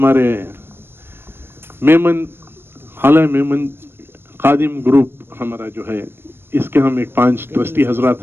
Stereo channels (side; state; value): left; late; 0.11 ms